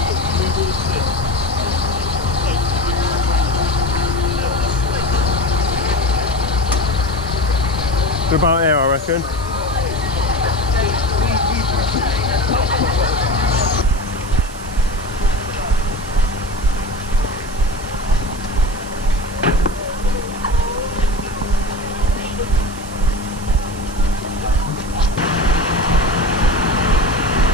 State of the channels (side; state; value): right; noise; hiss, 18 dB below the sound